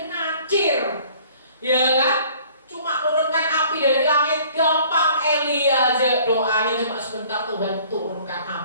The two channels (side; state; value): both; inverted; correlation -0.53